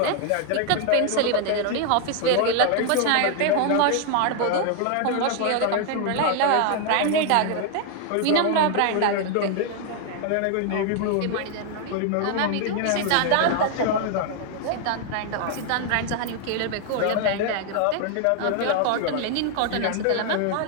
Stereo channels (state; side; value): different; both; correlation 0.00